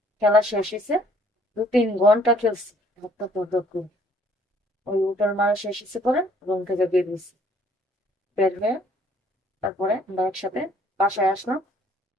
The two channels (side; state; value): both; normal; correlation 0.61